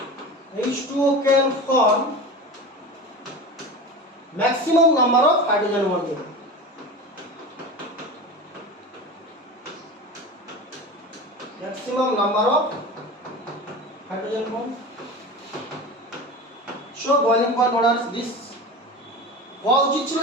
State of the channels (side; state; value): both; normal; correlation 0.30